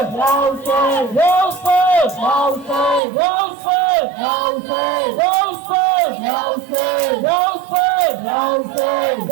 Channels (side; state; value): left; drops out; at 3.0 s